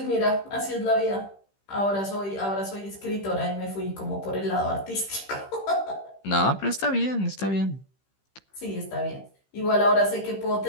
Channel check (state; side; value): late; right; 15 ms